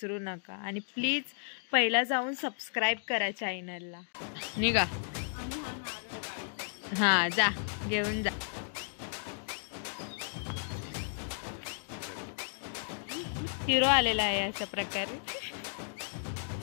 नका। आणि प्लीज पहिला जाऊन सबस्क्राईब करा चॅनलला। निघा, हां जा, घेऊन जा। हिरो आलेला आहे अशा प्रकारे।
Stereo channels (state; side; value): silent; right; digital silence